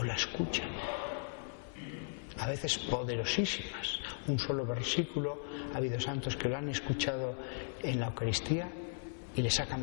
la escuchan. A veces poderosísimas. Un solo versículo, ha habido santos que lo han escuchado en la Eucaristía y les ha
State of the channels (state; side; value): silent; right; 53 dB below the other